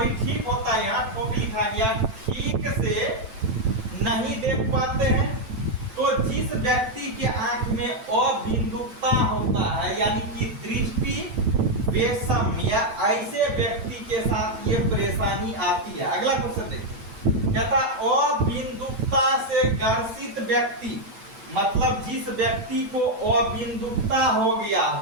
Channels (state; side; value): late; left; 9.0 ms